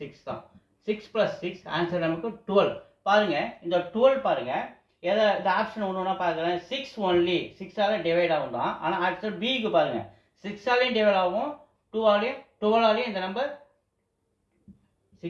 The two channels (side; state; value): both; identical; correlation 1.00